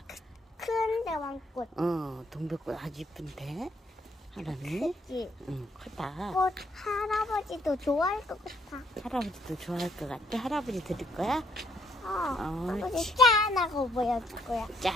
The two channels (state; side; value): normal; both; correlation 0.69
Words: 큰 대왕꽃. 동백꽃 아주 예쁜데, 하람이? 그치? 응, 크다. 꽃 할아버지도 좋아할 것 같아. 할아버지도 좋아할 것 같아. 할아버지 드릴 거야? 할아버지 짠하고 보여줄 거야.